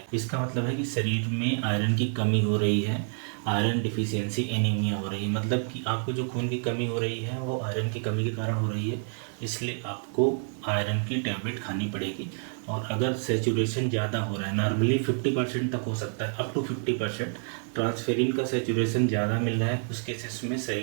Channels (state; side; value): silent; left; 56 dB below the other